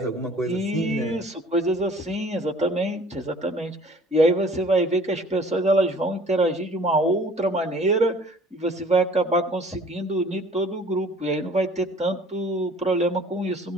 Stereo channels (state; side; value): normal; both; correlation 0.51